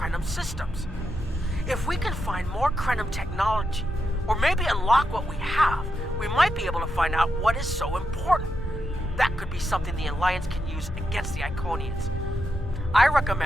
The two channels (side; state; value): both; normal; correlation 0.85